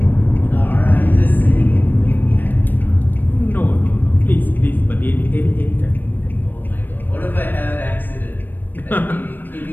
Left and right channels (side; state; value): right; late; 0.091 ms